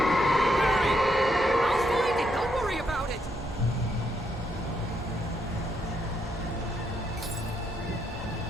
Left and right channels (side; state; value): both; normal; correlation 0.77